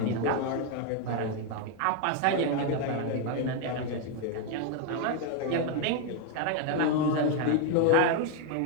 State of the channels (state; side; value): different; both; correlation 0.01